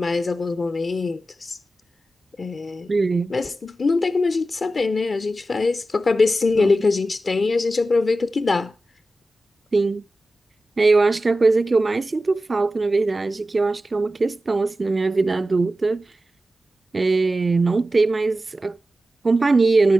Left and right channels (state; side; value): normal; both; correlation 0.93